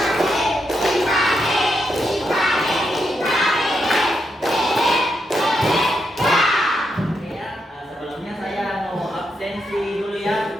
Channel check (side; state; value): both; normal; correlation 0.82